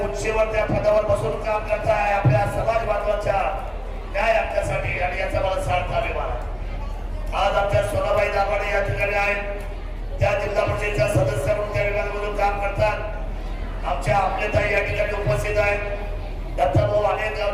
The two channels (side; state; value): both; identical; correlation 1.00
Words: उंचीवर त्या पदावर बसून काम करताय आपल्या समाज बांधवांच्या न्याय हक्कासाठी, आणि याचा मला सार्थ अभिमान आहे। आज आमच्या सोनाबाई दाभाडे या ठिकाणी आहेत, त्या जिल्हा परिषदेच्या सदस्य म्हणून त्या विभागामधून काम करतात। आमच्या आपलेताई या ठिकाणी उपस्थित आहेत। दत्ताभाऊ अनेक